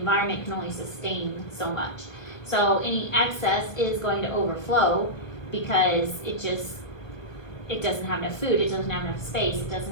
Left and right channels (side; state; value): right; late; 1.4 ms